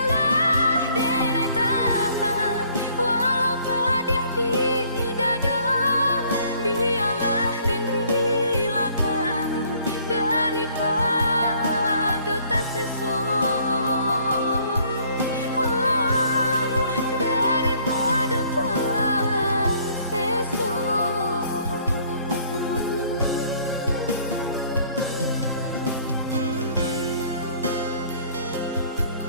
denai tahan walau pedih di dada. Biarlah den relakan daripada tak sesok. Daripada tak sesok.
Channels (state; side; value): inverted; both; correlation -0.60